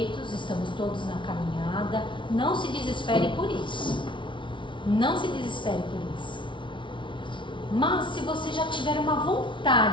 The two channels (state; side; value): late; right; 0.24 ms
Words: estamos todos na caminhada. Não se desespere por isso. Não se desespere por isso. Mas se você já tiver uma